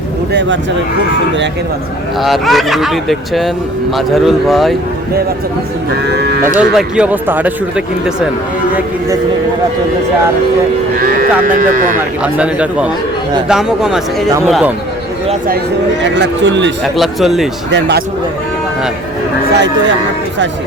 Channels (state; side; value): noise; left; rumble, 23 dB below the sound